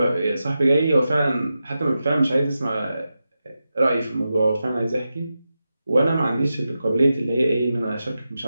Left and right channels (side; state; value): both; inverted; correlation -0.90